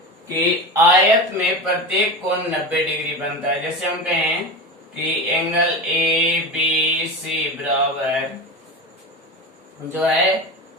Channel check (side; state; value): both; normal; correlation 0.24